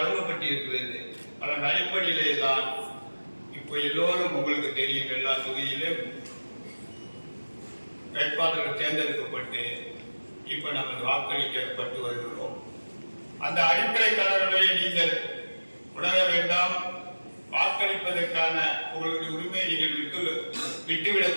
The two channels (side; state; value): both; inverted; correlation -1.00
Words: அதன் அடிப்படையிலே தான் இப்போ எல்லோரும் உங்களுக்கு தெரியும், எல்லா தொகுதியிலும் வேட்பாளர்கள் தேர்ந்தெடுக்கப்பட்டு இப்ப நம்ம வாக்களிக்கப்பட்டு வருகிறோம். அந்த அடிப்படை கலர்களை நீங்கள் உணர வேண்டாம். வாக்களிப்பதற்கான உங்களுடைய உரிமையை நீங்கள்